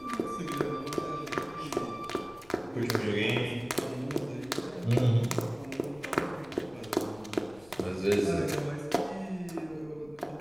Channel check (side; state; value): left; noise; rumble, 24 dB below the sound